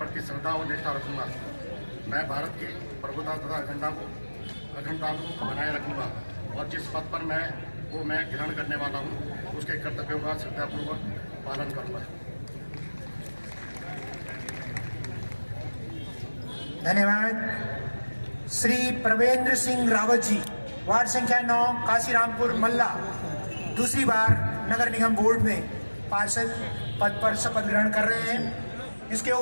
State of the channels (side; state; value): both; inverted; correlation -1.00